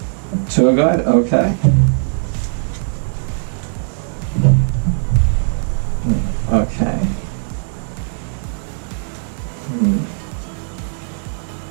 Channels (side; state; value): left; silent; 67 dB below the other